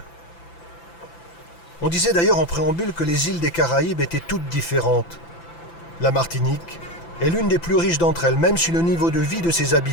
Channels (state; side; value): late; right; 5.9 ms